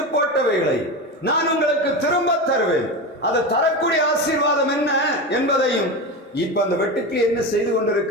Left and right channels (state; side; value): normal; both; correlation 0.21